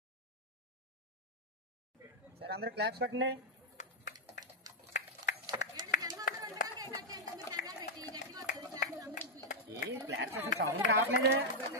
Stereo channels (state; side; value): normal; both; correlation -0.03